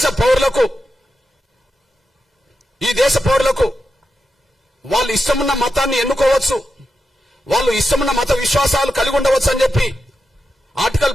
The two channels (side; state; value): both; normal; correlation 0.88